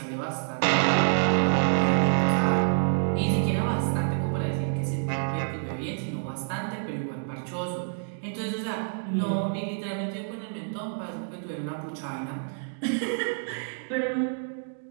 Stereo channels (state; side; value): silent; left; digital silence